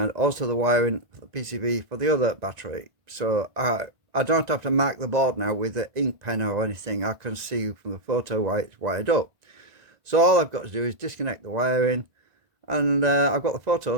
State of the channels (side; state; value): left; late; 1.9 ms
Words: also the wiring for the PCB for the other battery. So I don't have to mark the board now with the ink pen or anything. I can see from the photo why it's wired up. So all I've got to do is disconnect the wiring, and I've got the